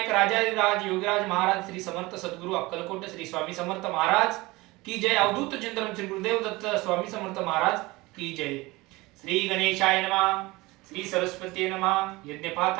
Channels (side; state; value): left; quieter; 21.7 dB